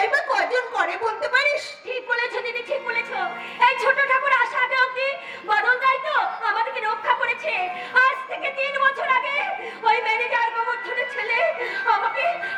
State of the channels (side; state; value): both; identical; correlation 1.00